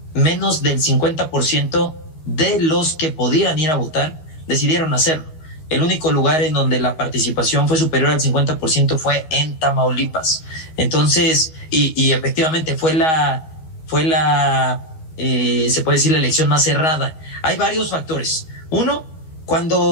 menos del 50% de los que podían ir a votar decidieron hacerlo. El único lugar en donde la participación fue superior al 50% fue en Tamaulipas. Entonces, y efectivamente se puede decir, la elección más cerrada. Hay varios factores. Uno,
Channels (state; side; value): late; right; 13 ms